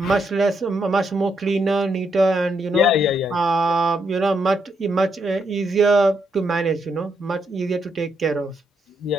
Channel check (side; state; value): both; normal; correlation 0.78